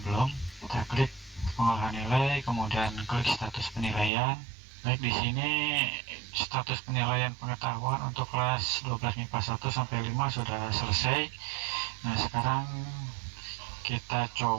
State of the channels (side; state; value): left; drops out; at 4.1 s